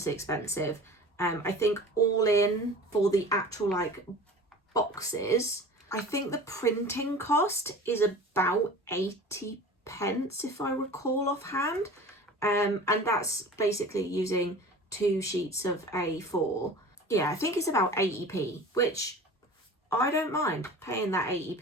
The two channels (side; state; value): both; normal; correlation 0.39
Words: expensive. I think all in for the actual like boxes, I think the printing cost is about 80 pence if I recall offhand, and that's basically using 2 sheets of A4. Yeah, I think it's about 80p, which I don't mind paying that